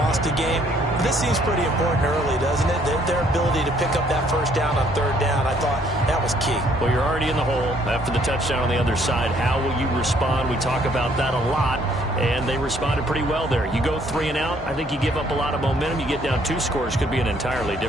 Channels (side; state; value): both; normal; correlation 0.64